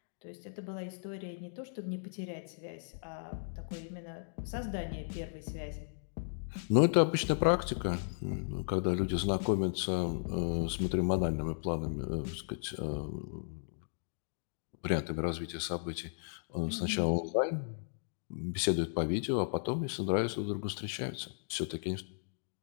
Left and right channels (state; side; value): silent; right; digital silence